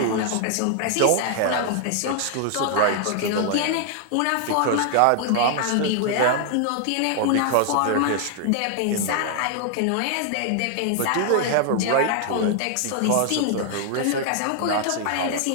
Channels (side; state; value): both; different; correlation 0.00